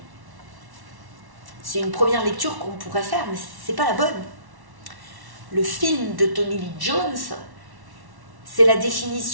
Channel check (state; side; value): late; left; 1.1 ms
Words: C'est une première lecture qu'on pourrait faire, mais ce n'est pas la bonne. Le film de Tommy Lee Jones, c'est la